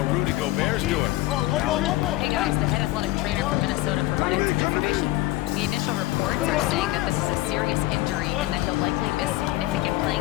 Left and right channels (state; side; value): quieter; right; 17.6 dB